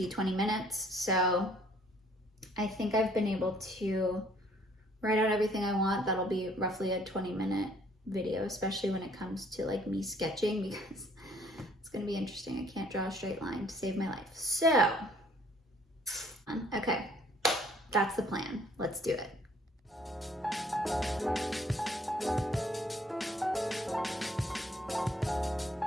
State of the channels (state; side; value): normal; both; correlation 0.61